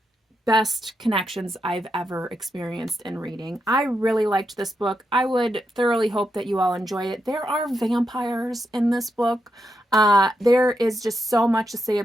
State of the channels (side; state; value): both; normal; correlation 0.84